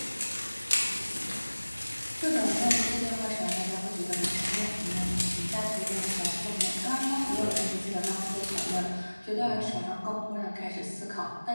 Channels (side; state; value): both; inverted; correlation -1.00